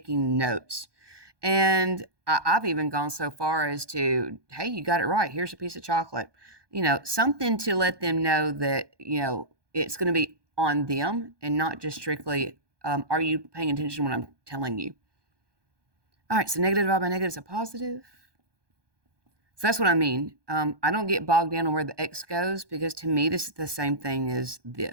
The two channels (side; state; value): left; late; 1.2 ms